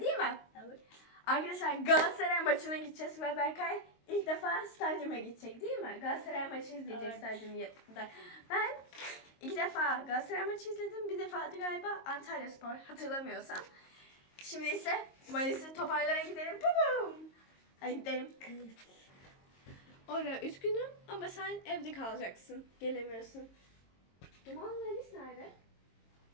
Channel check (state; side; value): late; right; 22 ms